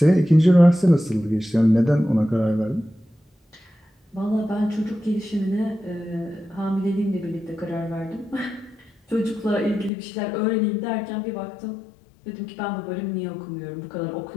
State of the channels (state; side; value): drops out; right; at 9.9 s